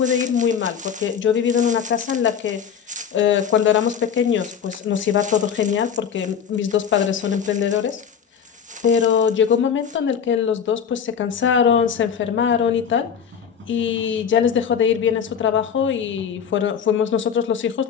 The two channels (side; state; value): right; quieter; 7.6 dB